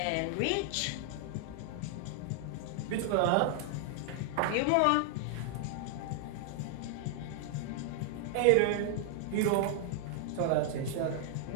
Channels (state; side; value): different; both; correlation 0.00